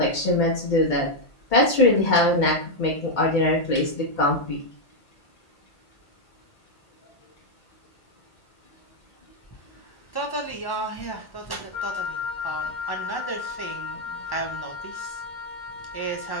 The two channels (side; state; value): right; late; 1.1 ms